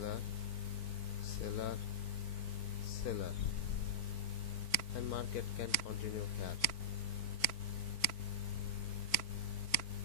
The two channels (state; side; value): late; right; 4.5 ms